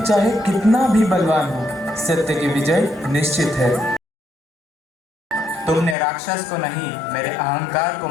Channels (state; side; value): drops out; right; at 6.0 s